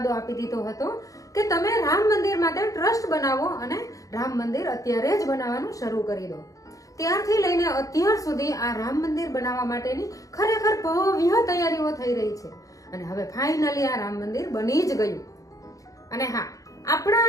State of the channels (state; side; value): late; right; 0.16 ms